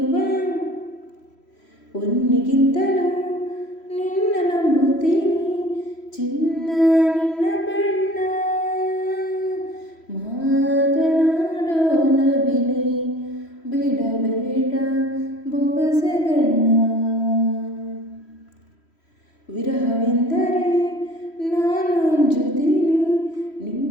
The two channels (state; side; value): late; right; 3.1 ms